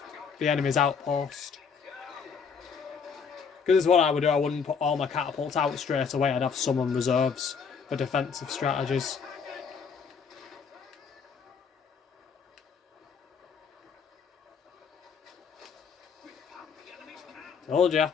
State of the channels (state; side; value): quieter; right; 6.0 dB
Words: the enemy's outpost. Because this is what I would do. I wouldn't put all my catapults out straight away. I'd have some on reserves for defensive strategies. Told ya.